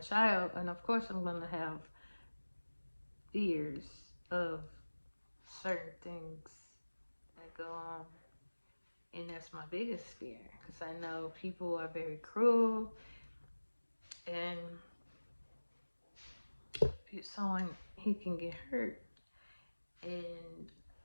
and of course I'm gonna have fears of certain things that go on, and that's my biggest fear because I know people are very cruel, and someone he can get hurt, and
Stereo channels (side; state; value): both; inverted; correlation -1.00